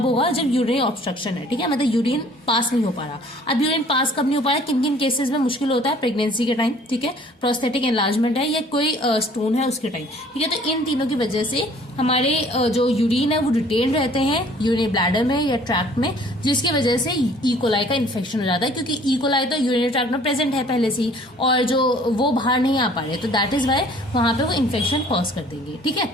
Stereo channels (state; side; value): normal; both; correlation 0.54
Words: होगा, जब यूरिन ऑब्स्ट्रक्शन है। ठीक है, मतलब यूरिन पास नहीं हो पा रहा। अब यूरिन पास कब नहीं हो पा रहा, किन किन केसेस में मुश्किल होता है, प्रेगनेंसी के टाइम, ठीक है, प्रोस्टेटिक एनलार्जमेंट है या कोई स्टोन है उसके टाइम। ठीक है, तो इन तीनों की वजह से हमारे जो यूरिन है वो रिटेन रहते हैं यूरिनरी ब्लैडर में या ट्रैक्ट में, जिसकी वजह से इकोलाई का इन्फेक्शन हो जाता है, क्योंकि इकोलाई तो यूरिनरी ट्रैक्ट में प्रेजेंट है पहले से ही, और जो वो बाहर नहीं आ पा रहे, तो दैट इज वाई वहां पे वो इन्फेक्शन कॉज कर देंगे। ठीक है,